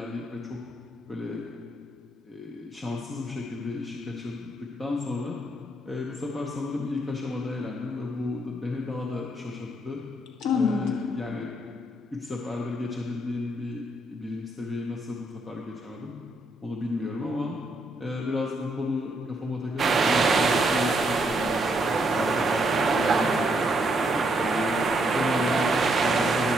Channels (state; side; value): normal; both; correlation 0.75